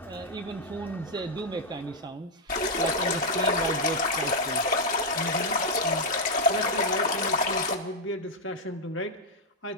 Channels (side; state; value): both; normal; correlation -0.02